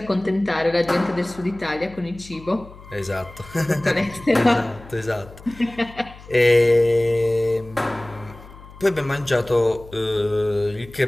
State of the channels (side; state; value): left; noise; hum, 19 dB below the sound